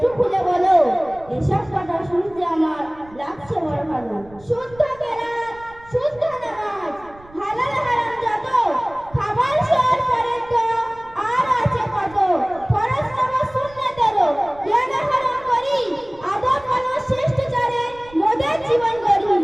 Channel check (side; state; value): right; noise; rumble, 23 dB below the sound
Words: খুলে বলো। এসব কথা শুনতে আমার লাগছে বড় ভালো। শুদ্ধ কেরাত, শুদ্ধ নামাজ, হালাল হারাম যত, খাবার শোয়ার পরে তো আর আছে কত। ফরজ নামাজ সুন্নতেরও জ্ঞান আহরণ করি, আদব মানুষ শিষ্টাচারে মোদের জীবন গড়ি।